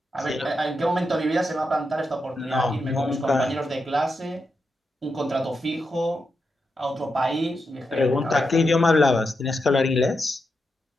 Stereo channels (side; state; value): both; normal; correlation 0.86